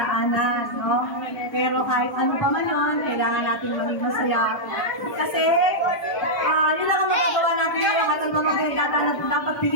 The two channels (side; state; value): right; late; 1.1 ms